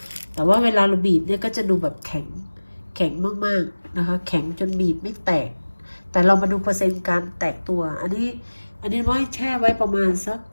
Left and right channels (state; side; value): inverted; both; correlation -1.00